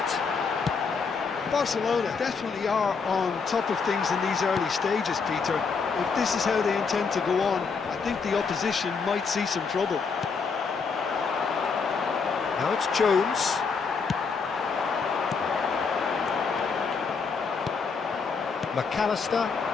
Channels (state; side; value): quieter; right; 5.2 dB